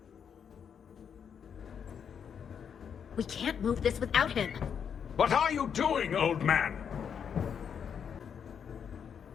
We can't move this without him. What are you doing, old man?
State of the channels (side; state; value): right; quieter; 7.5 dB